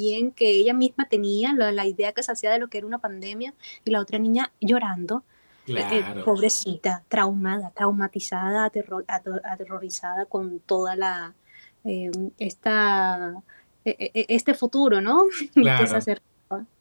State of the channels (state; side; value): inverted; both; correlation -1.00